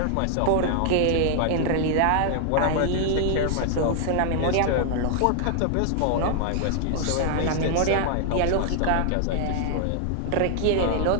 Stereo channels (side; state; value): both; different; correlation 0.00